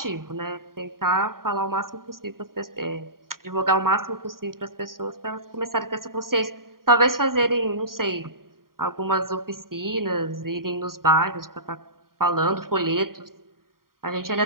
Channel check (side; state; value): left; late; 0.92 ms